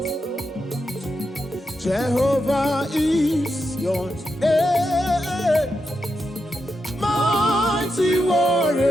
Jehovah is your name. Mighty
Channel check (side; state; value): both; normal; correlation 0.86